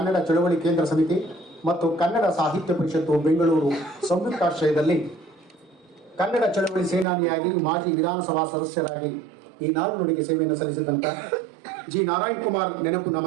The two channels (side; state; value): left; drops out; at 7.1 s